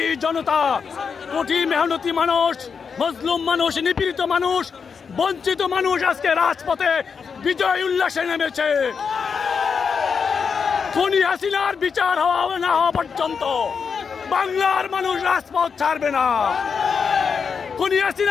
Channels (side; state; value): right; quieter; 6.0 dB